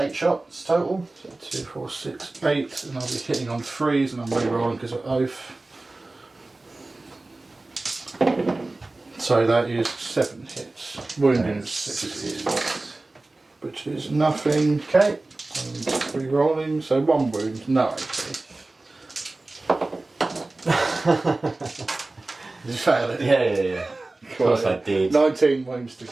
shots total. So 2, 4, 6, 8, and I'll be hitting on 3s, and I'm re-rolling because of oath. So that is 7 hits. Wounding is 6 hits, which is nothing. Okay. And re-rolling, so 1 wound, no AP. Did you fail it? Yeah. Of course I did. 19 wounds to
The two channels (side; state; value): left; quieter; 3.1 dB